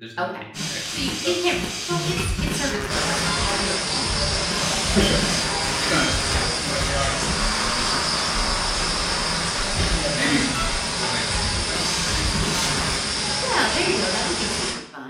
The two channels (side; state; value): both; identical; correlation 1.00